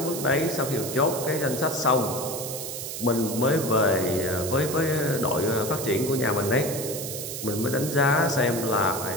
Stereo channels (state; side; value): noise; right; hiss, 7 dB below the sound